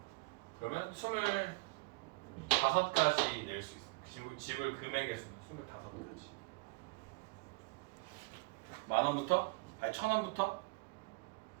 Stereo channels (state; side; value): quieter; left; 27.1 dB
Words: 그러면 25가지 낼 수 있어. 지불 금액의 수는 25가지. 10,000원부터? 아니 1,000원부터